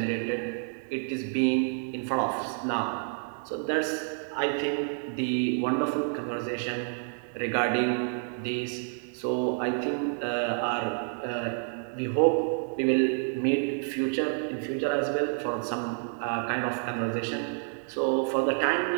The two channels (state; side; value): silent; left; 59 dB below the other